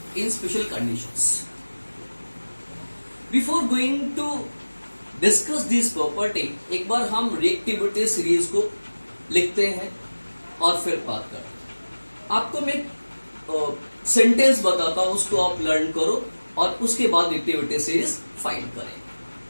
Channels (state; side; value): inverted; both; correlation -1.00